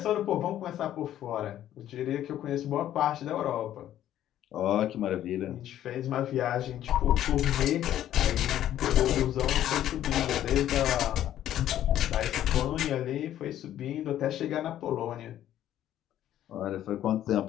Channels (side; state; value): right; quieter; 11.9 dB